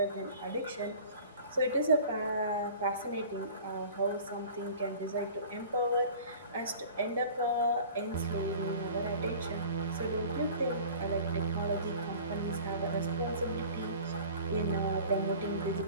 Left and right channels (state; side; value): inverted; both; correlation -0.44